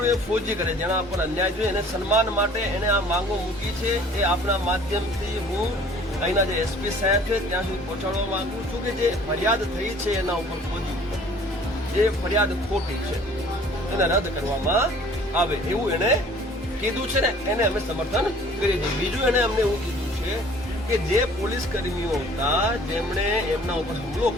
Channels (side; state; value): both; normal; correlation 0.52